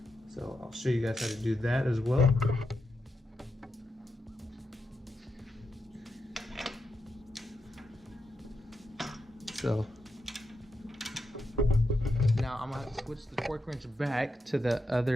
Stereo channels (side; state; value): both; normal; correlation 0.86